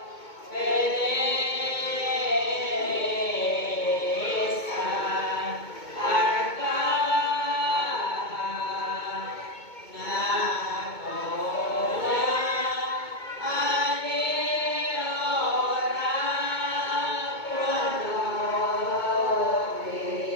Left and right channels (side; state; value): right; late; 2.2 ms